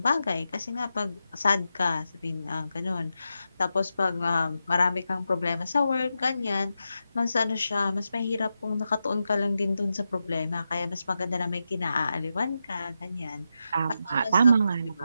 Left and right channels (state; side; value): inverted; both; correlation -0.88